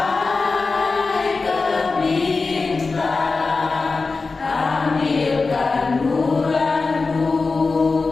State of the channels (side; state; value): right; quieter; 4.1 dB